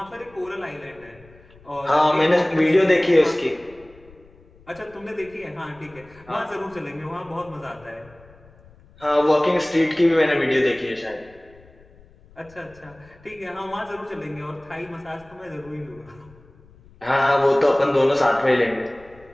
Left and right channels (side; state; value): left; noise; rumble, 26 dB below the sound